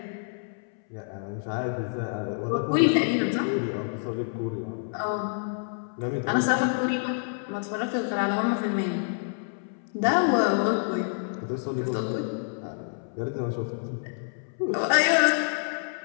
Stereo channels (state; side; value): silent; right; 60 dB below the other